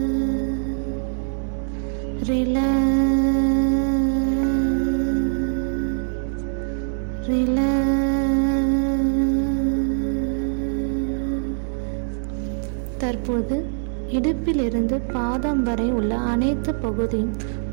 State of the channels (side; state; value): left; silent; 58 dB below the other